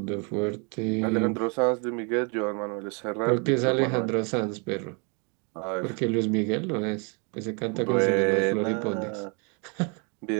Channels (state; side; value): quieter; left; 35.1 dB